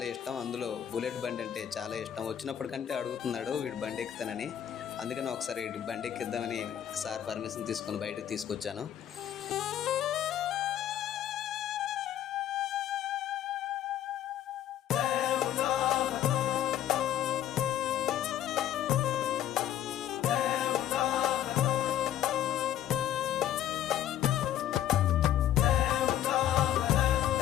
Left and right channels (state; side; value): quieter; right; 11.1 dB